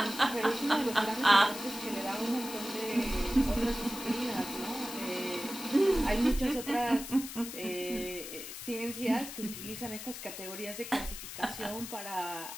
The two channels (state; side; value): noise; left; hiss, 10 dB below the sound